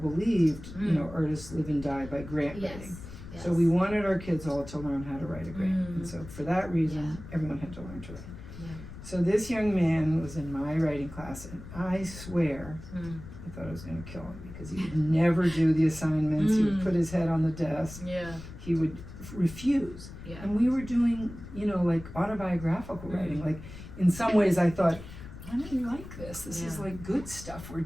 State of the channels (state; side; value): noise; left; rumble, 14 dB below the sound